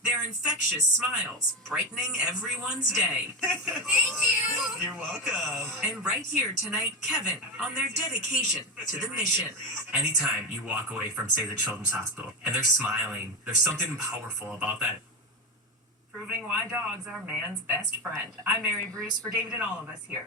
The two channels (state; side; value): normal; both; correlation 0.16